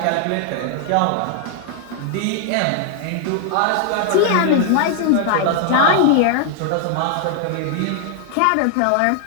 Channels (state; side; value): different; both; correlation 0.00